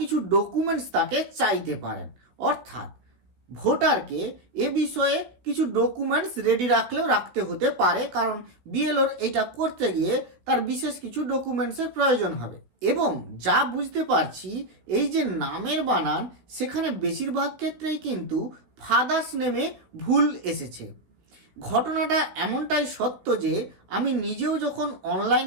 ডকুমেন্টস তাকে চাইতে পারেন, অর্থাৎ ভোটারকে এ বিষয়ে কিছু ডকুমেন্টস রেডি রাখতে হতে পারে, কারণ বিএলওর এটা করতে গিয়ে তার বিশেষ কিছু ডকুমেন্টসের প্রয়োজন হবে। এবং যা বুঝতে পারছি, এই যে নামের বানান, সেখানে বেশিরভাগ ক্ষেত্রেই কিন্তু ফাদার্স নেমে ভুল এসেছে। ঘটনাটা এমনটাই সত্য যে আমি নিজেও যখন অনলাইন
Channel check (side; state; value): left; late; 16 ms